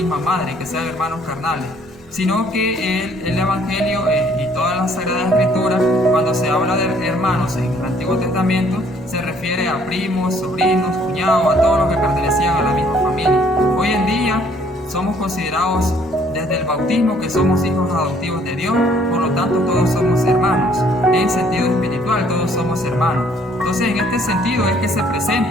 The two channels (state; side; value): normal; both; correlation 0.62